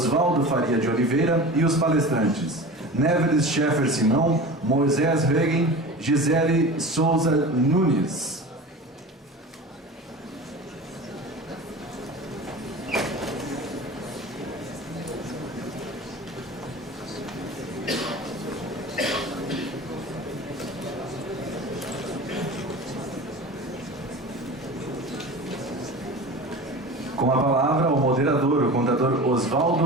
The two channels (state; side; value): normal; both; correlation 0.34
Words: Faria de Oliveira, e os palestrantes Neveles Scheffer Simão, Moisés Regen, Gisele Souza Nunes. Com a palavra, o moderador, o contador